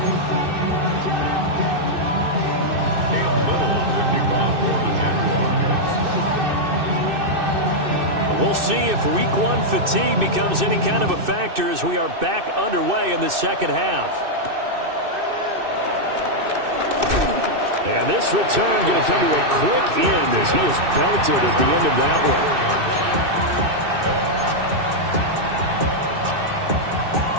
We'll see if week one fatigue becomes any kind of a factor as we are back underway in the second half. And this return going to come to a quick end as he is belted at the end of that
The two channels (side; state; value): left; late; 2.6 ms